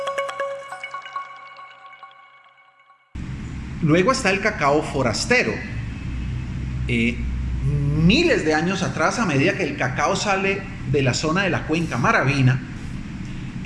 Luego está el cacao forastero. Miles de años atrás, a medida que el cacao sale de la zona de la cuenca maravina,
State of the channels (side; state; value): both; identical; correlation 1.00